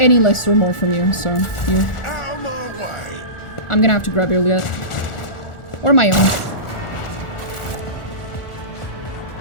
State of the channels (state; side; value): late; right; 1.4 ms